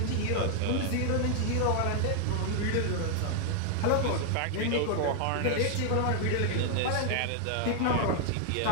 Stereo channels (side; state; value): both; different; correlation 0.00